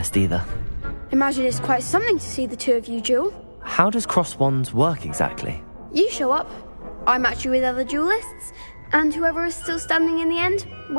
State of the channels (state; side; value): inverted; both; correlation -1.00